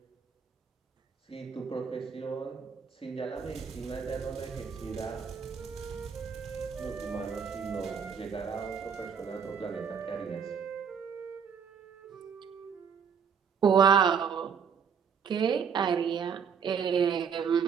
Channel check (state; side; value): quieter; left; 6.8 dB